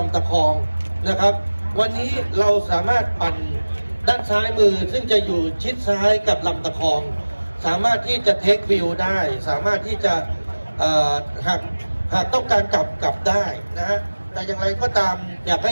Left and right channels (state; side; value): inverted; both; correlation -1.00